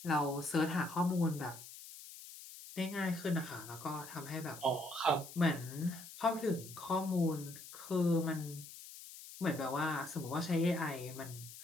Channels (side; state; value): left; noise; hiss, 14 dB below the sound